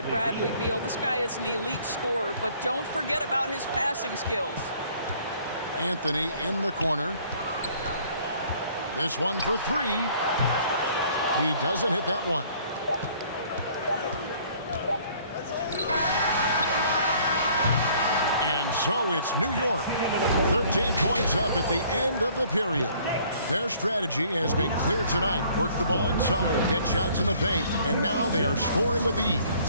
Bradley Beal. This guy is an elite scorer, but don't forget about his passing skills. Anthony in the corner. This one for three. He doesn't hit that one. And so it's New York. 13 points up at the end of the period. Their strategy has been clear tonight. Work the ball inside, get shots in the paint, and now they are scoring with ease.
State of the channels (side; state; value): both; inverted; correlation -0.58